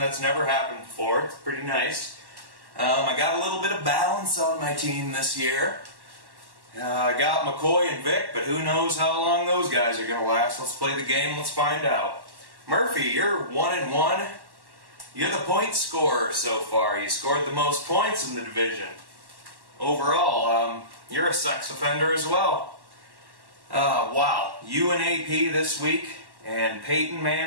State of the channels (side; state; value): left; late; 1.1 ms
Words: never happened before. It's pretty nice. I got a little bit of balance on my team this year. I got McCoy and Vic, but who knows how long those guys are going to last. Let's play the game. Let's find out. Murphy, you're 1-1. You're the point scorer so far. You scored the most points in the division. Overall, you're a sex offender as well. Wow. You and AP this week, and Peyton